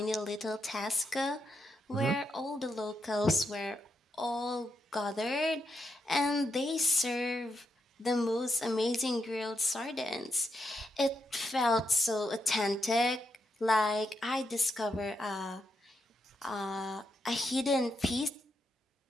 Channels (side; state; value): both; normal; correlation 0.82